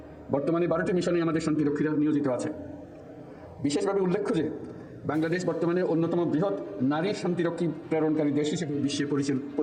বর্তমানে 12টি মিশনে আমাদের শান্তিরক্ষীরা নিয়োজিত আছে। বিশেষভাবে উল্লেখ্য যে বাংলাদেশ বর্তমানে অন্যতম বৃহৎ নারী শান্তিরক্ষী প্রেরণকারী দেশ হিসেবে বিশ্বে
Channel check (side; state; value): both; identical; correlation 1.00